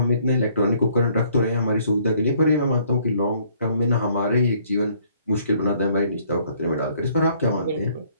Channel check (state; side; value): inverted; both; correlation -0.63